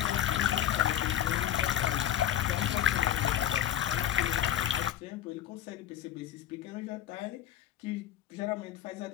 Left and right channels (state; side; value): quieter; right; 11.5 dB